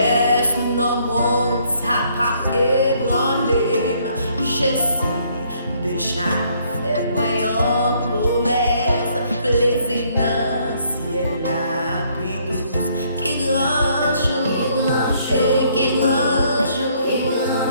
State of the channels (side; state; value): both; inverted; correlation -0.67